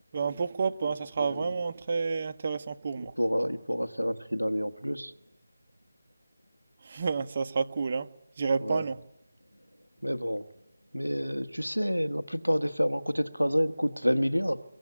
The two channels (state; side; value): inverted; both; correlation -0.96